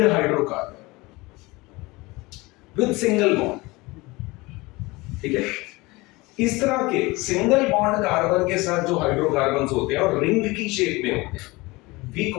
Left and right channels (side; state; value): right; quieter; 22.8 dB